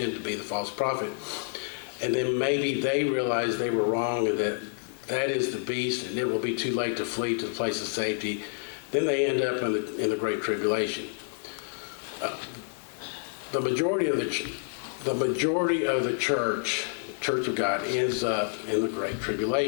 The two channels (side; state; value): right; silent; digital silence